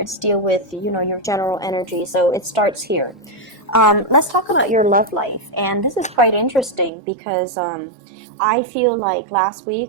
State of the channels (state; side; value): drops out; left; at 6.9 s